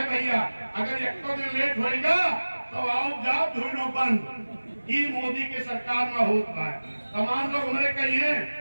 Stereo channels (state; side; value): inverted; both; correlation -1.00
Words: भैया, अगर 1 दिन लेट होगा तो आओ जाओ ढूंढो बंद। ये मोदी की सरकार में होता है। तमाम लोग हमारे कहिए